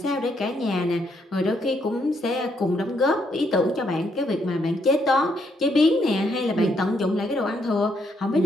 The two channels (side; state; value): both; normal; correlation 0.74